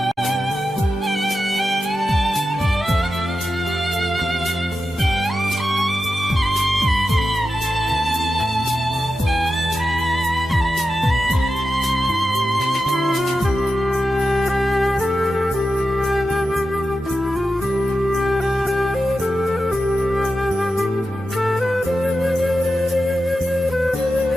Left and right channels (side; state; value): both; normal; correlation 0.90